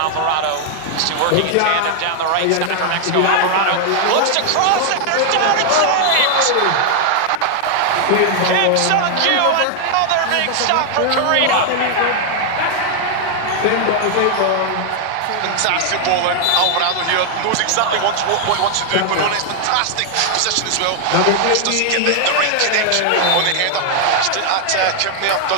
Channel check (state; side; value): different; both; correlation 0.00